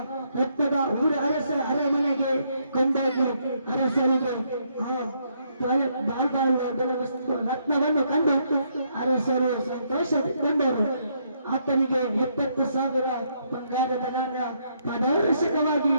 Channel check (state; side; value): inverted; both; correlation -0.73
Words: ರಕ್ತದ ಅರಸ ಅರಮನೆಗೆ ಕೊಂಡೋಗಿ ಅರಸರಿಗೆ ಆ ವಸ್ತು ರತ್ನವನ್ನು ಕಂಡು ಅರಸರು ಸಂತೋಷಗೊಂಡರು. ಆತನಿಗೆ 70,000 ಬಂಗಾರದ ನಾಣ್ಯ ಪಾರದರ್ಶಕವಾಗಿ